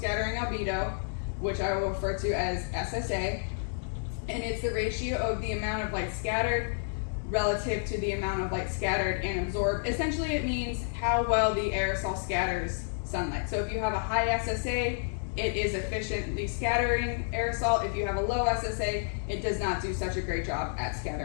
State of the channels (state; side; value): silent; right; digital silence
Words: albedo, which I will refer to as SSA, and it's the ratio of the amount of light scattered relative to the amount of light scattered and absorbed. Essentially, it means how well the aerosol scatters sunlight. So if you have a high SSA, it is efficiently scattering aerosol. If you have a low SSA, it does not do such a great job at